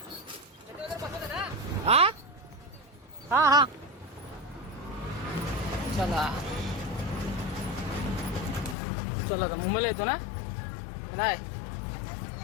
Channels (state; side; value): drops out; right; at 8.8 s